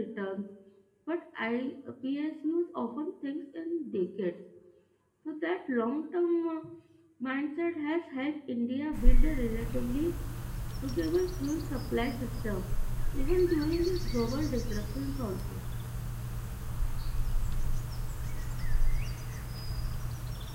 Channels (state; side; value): identical; both; correlation 1.00